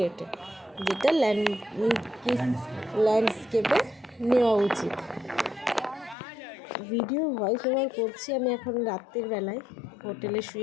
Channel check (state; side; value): drops out; right; at 6.2 s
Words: যেটা ল্যান্ডস্কেপে নেওয়া উচিত। ভিডিও ভয়েস ওভার করছি আমি এখন রাত্রের বেলায় হোটেলে